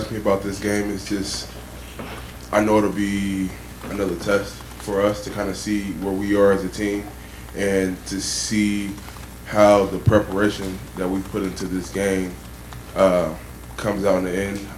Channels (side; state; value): both; identical; correlation 1.00